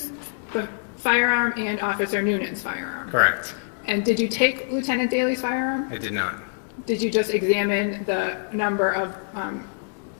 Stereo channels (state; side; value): silent; right; digital silence